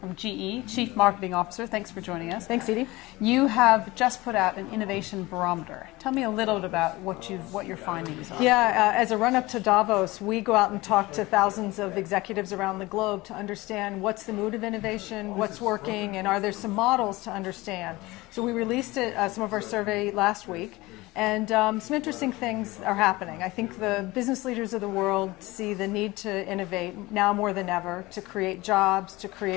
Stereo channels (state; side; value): quieter; right; 20.7 dB